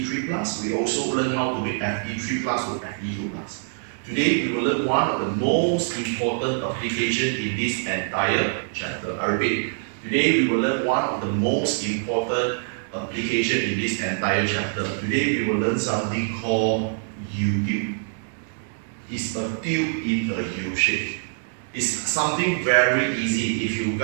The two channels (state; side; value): silent; left; digital silence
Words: plus. We also learn how to make Fe3 plus to Fe2 plus. Today we will learn one of the most important application in this entire chapter. I repeat, today we will learn one of the most important application in this entire chapter. Today we will learn something called U-tube. It's a tube in a U shape. It's something very easy if you